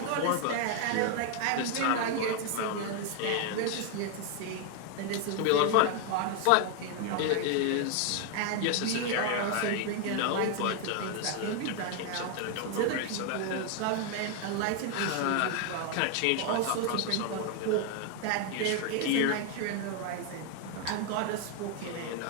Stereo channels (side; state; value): both; different; correlation 0.00